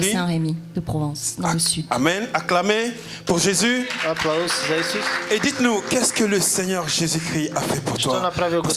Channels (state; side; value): identical; both; correlation 1.00